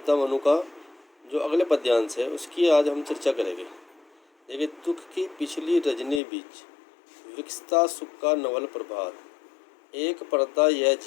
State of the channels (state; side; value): drops out; right; at 6.2 s